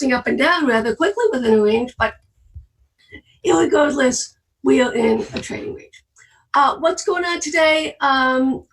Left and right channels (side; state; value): both; identical; correlation 1.00